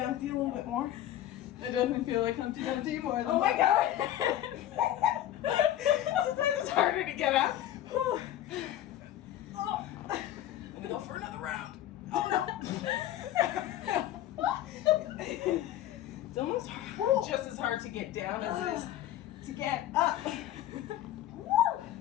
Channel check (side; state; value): right; quieter; 12.6 dB